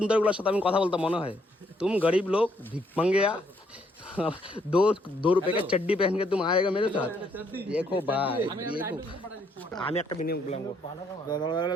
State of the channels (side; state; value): both; normal; correlation 0.70